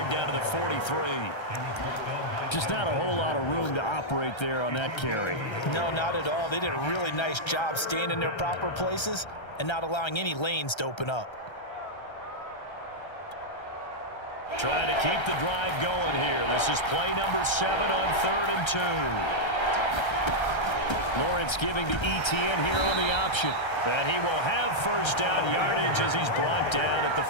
down to the 43. Just not a whole lot of room to operate there on that carry. No, not at all. They did a really nice job staying in their proper places and not allowing any lanes to open up. Trying to keep the drive going here. This is play number 7 on 3rd and 2. Lawrence giving to ETN here on the option. And he will have first down yardage as he's brought down at the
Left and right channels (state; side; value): late; right; 1.3 ms